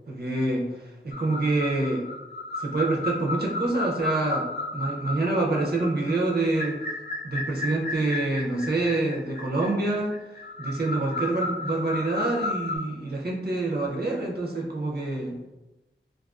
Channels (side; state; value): both; normal; correlation 0.60